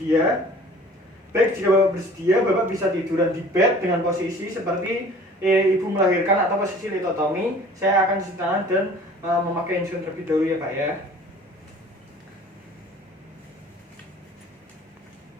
Baik, jika Bapak bersedia, Bapak bisa tiduran di bed dengan posisi seperti ibu melahirkan atau posisi litotomi. Saya akan cuci tangan dan memakai insulin terlebih dahulu ya Pak ya.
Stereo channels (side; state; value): both; normal; correlation 0.48